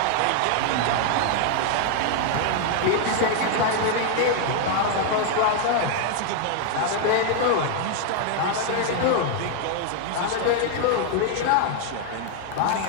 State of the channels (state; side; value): different; both; correlation 0.00